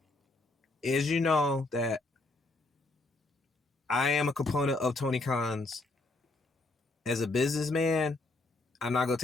As you know that I am a component of Tony Khan's as a businessman. I'm not gonna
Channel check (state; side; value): quieter; right; 3.1 dB